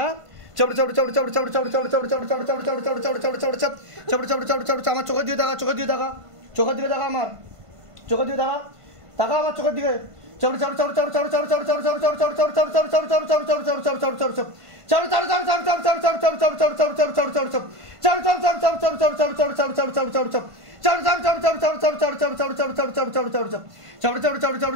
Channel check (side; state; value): left; late; 1.5 ms